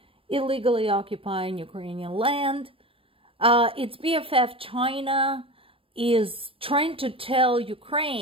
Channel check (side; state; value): left; late; 0.26 ms